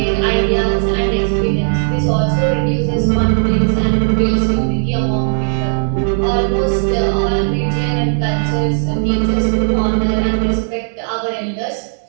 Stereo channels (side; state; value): left; silent; digital silence